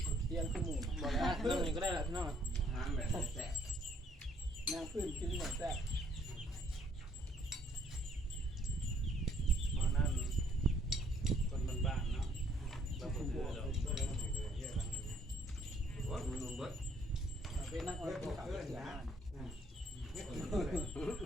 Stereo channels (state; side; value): normal; both; correlation 0.64